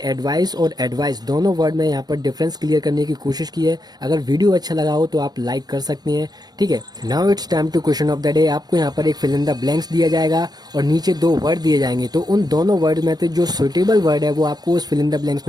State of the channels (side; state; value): left; late; 0.19 ms